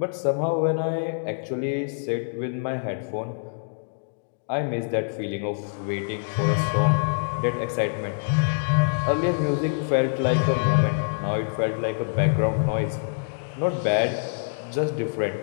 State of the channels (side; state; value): right; silent; digital silence